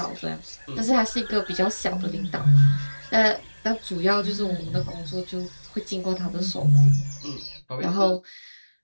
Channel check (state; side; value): inverted; both; correlation -1.00